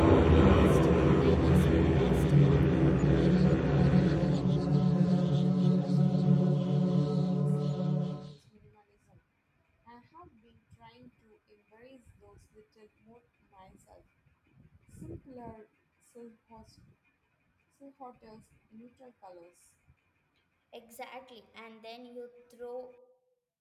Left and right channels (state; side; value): identical; both; correlation 1.00